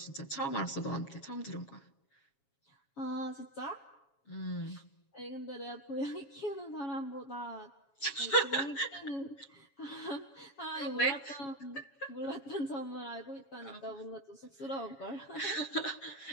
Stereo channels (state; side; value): late; right; 7.3 ms